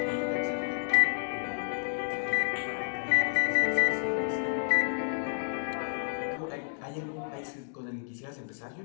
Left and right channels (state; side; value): silent; right; digital silence